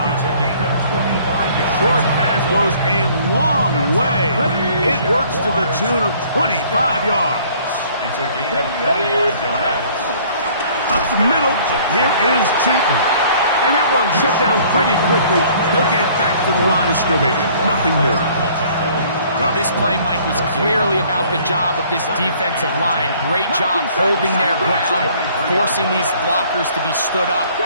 It's a gain of 25 yards. Short pass goes a long way. It works to the tune of 25 yards. It's a gain of 25 yards. Up the middle, here is Chilton. And that one shut down pretty quickly. He'll get back to the line of scrimmage. Nothing more. Well, this play, Mike, was clearly about the job of this defensive line. Great job holding their ground, forcing these blockers to be stood up.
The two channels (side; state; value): both; inverted; correlation -0.56